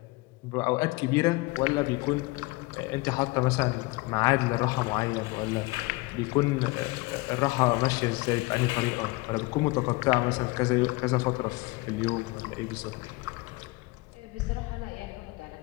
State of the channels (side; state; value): right; quieter; 23.7 dB